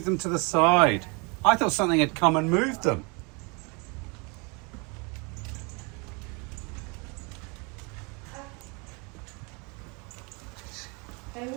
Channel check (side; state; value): left; quieter; 31.2 dB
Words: them to the side. I thought something had come and moved them. They're